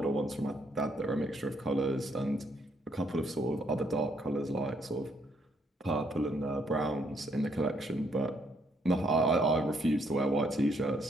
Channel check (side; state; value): both; normal; correlation 0.71